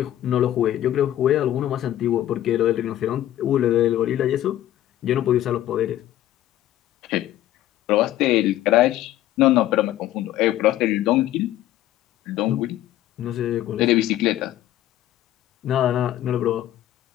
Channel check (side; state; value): right; quieter; 13.3 dB